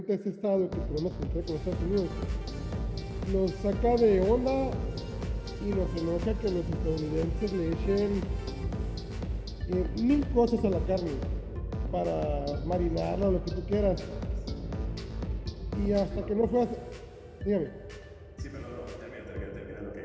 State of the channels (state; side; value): identical; both; correlation 1.00